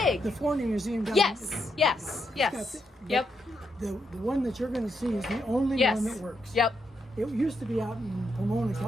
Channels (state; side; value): normal; both; correlation 0.80